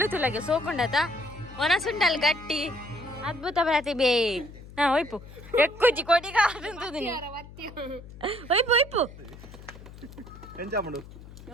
తులగే సోకుండత మనసుండాలి గట్టి అద్భుత ప్రతిభే వైపు ఎక్కువ కొద్దిగా ఉంటుంది వైపు వైపు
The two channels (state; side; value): noise; left; hum, 17 dB below the sound